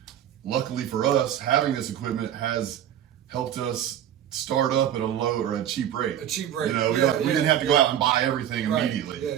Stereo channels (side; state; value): left; quieter; 10.7 dB